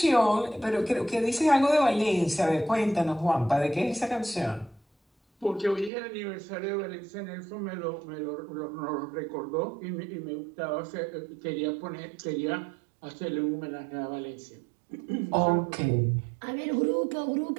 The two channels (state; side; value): drops out; left; at 5.9 s